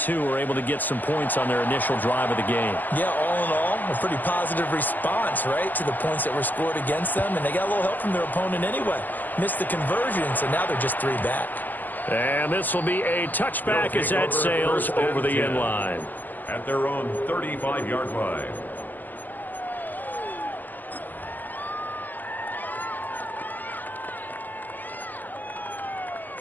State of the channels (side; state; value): right; late; 0.085 ms